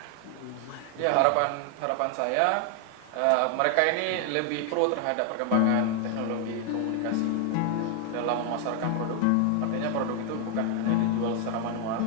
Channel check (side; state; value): both; different; correlation 0.00